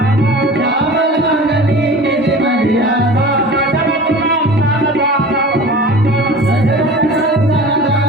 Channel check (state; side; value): normal; both; correlation 0.38